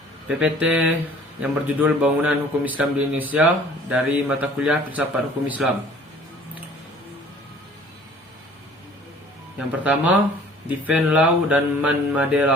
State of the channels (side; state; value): both; normal; correlation 0.52